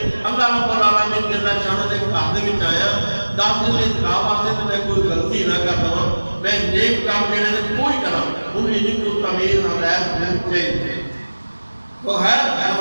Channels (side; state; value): both; inverted; correlation -1.00